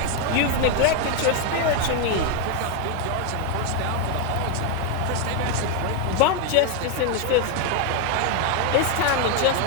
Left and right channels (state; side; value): different; both; correlation 0.01